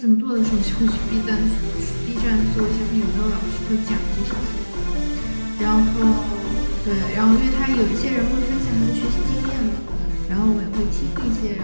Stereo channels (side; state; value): both; inverted; correlation -1.00